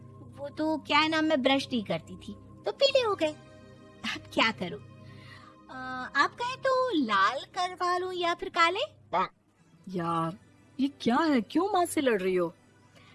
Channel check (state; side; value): identical; both; correlation 1.00